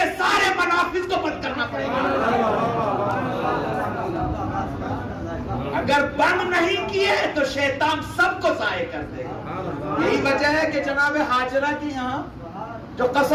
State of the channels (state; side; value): identical; both; correlation 1.00